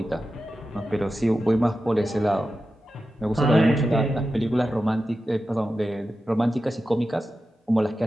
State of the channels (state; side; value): normal; both; correlation 0.92